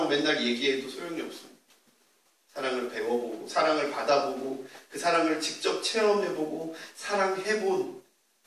맨날 얘기해도 소용이 없습니다. 사랑을 배워보고, 사랑을 받아보고, 그 사랑을 직접 체험해보고, 사랑해본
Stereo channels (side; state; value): both; identical; correlation 1.00